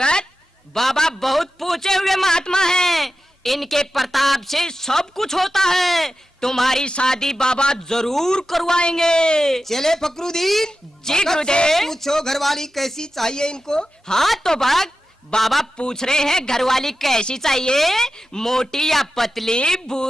बाबा बहुत पूछे हुए महात्मा हैं, इनके प्रताप से सब कुछ होता है। तुम्हारी शादी बाबा जरूर करवाएंगे। चले फकरुद्दीन, जी भगत से गुरुदेव। पूछो घरवाली कैसी चाहिए इनको? हाँ तो भक्त बाबा पूछ रहे हैं घरवाली कैसी चाहिए, मोटी या पतली,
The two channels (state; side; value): normal; both; correlation 0.92